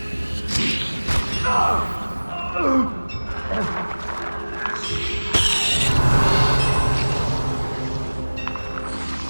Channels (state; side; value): inverted; both; correlation -1.00